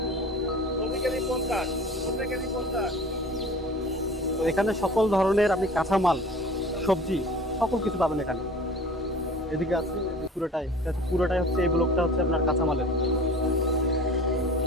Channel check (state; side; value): normal; both; correlation 0.42